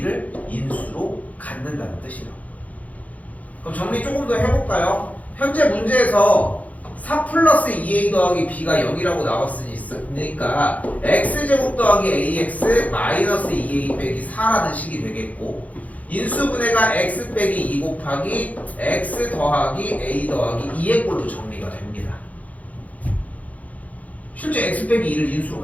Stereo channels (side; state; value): right; late; 0.073 ms